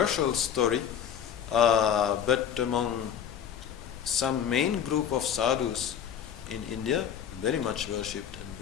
story, but among some main group of sadhus in India, very much worshipped and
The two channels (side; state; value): right; quieter; 8.7 dB